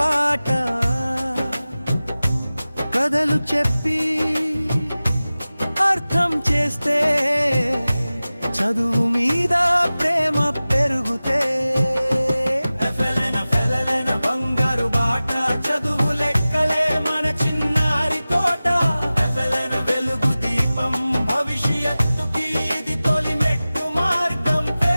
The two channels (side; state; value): both; inverted; correlation -0.97